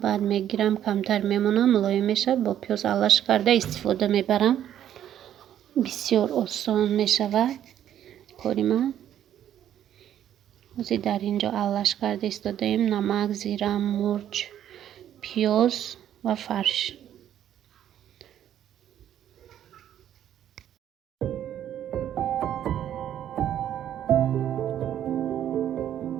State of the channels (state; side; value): quieter; left; 10.7 dB